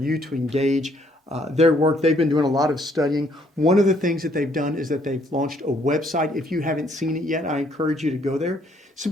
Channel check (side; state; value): both; normal; correlation 0.66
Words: to engage their work. They've been doing a lot of studying. One of the things that they've done is that they've launched a website. If you haven't seen it yet, I encourage you to go there.